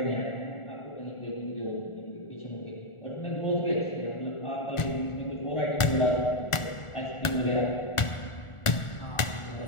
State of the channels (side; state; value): right; late; 1.4 ms